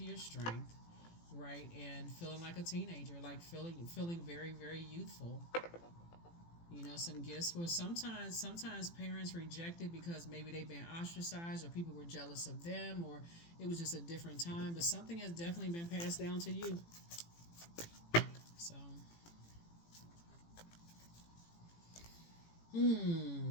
your strength, right, and feeling like a teenager, like feeling very, very youthful. Some gifts were sometimes parents rejected because maybe they've been ostracized or people were jealous of them, or it was just a different time. But something has definitely been passed down to you. So,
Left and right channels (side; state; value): right; late; 18 ms